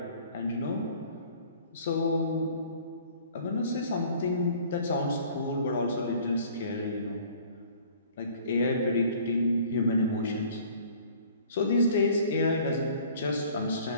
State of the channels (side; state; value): both; inverted; correlation -0.52